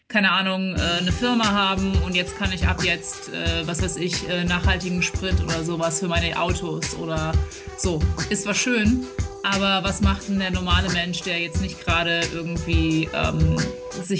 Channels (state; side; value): identical; both; correlation 1.00